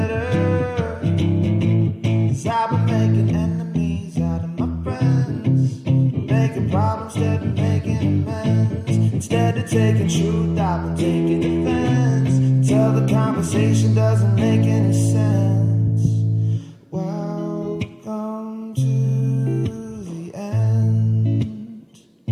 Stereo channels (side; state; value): both; identical; correlation 1.00